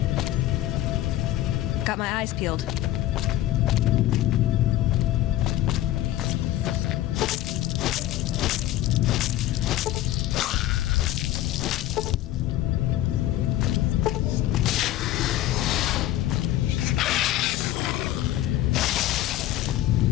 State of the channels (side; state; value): right; quieter; 14.1 dB